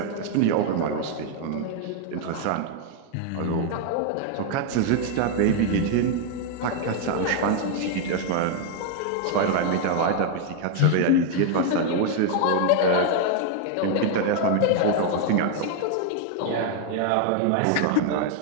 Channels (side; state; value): both; different; correlation 0.00